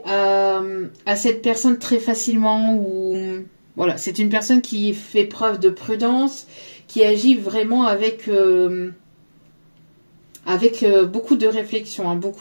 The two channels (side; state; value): both; inverted; correlation -1.00